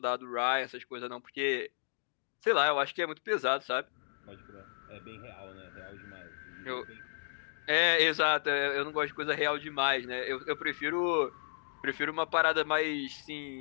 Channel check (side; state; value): right; silent; digital silence